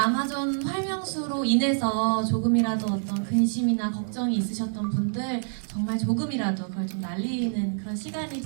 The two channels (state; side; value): silent; left; 60 dB below the other